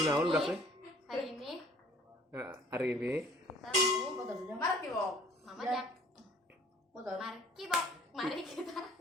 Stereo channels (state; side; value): normal; both; correlation 0.53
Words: udah kan? Hari ini Hari ini kita mau Mari kibok. Mama Ya. Jak. Foto. Mari kibok. Mari kita